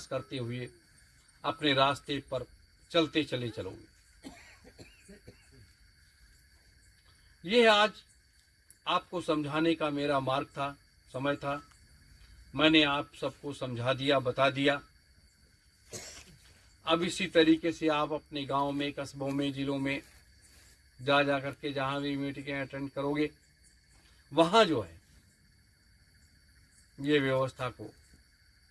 करते हुए अपने रास्ते पर चलते चले चलोगे। यह आज आपको समझाने का मेरा मार्ग था, समय था। मैंने आप सबको समझा दिया, बता दिया। अब इसी तरीके से आप अपने गांव में, कस्बों में, जिलों में जा करके जहां भी मीटिंगें अटेंड करोगे, वहां जो है ये व्यवस्था को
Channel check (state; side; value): identical; both; correlation 1.00